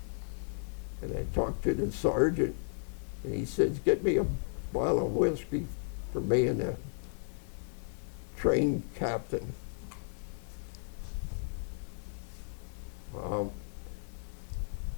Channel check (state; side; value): silent; right; digital silence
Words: I talked to the sergeant, and he says, get me a bottle of whiskey for me and the train captain.